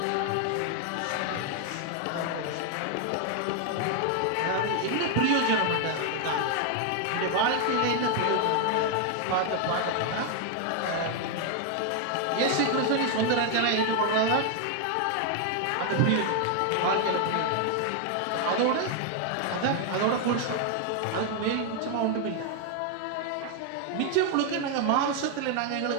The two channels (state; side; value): different; both; correlation 0.00